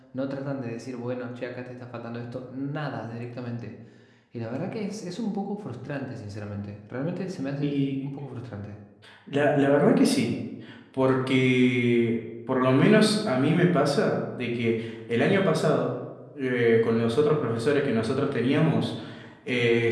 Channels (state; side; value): identical; both; correlation 1.00